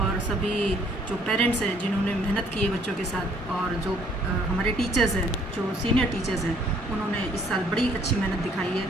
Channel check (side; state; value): both; normal; correlation 0.62